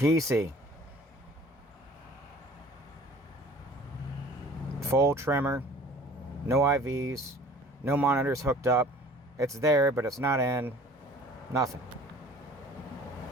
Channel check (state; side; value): normal; both; correlation 0.49